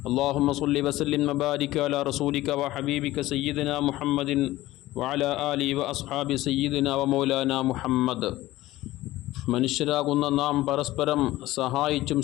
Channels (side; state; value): right; quieter; 16.9 dB